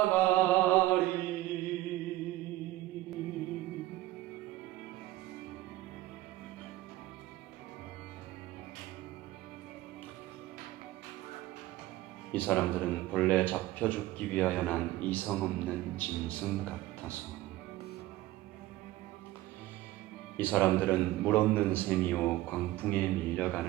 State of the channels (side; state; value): left; quieter; 16.5 dB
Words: 이 사람들은 본래 잡혀 죽기 위하여 난 이성 없는 짐승 같아서 이 사람들은 물 없는 샘이요 광풍에